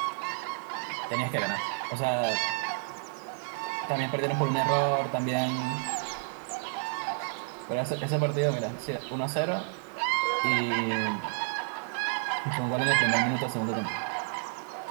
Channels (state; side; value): silent; left; digital silence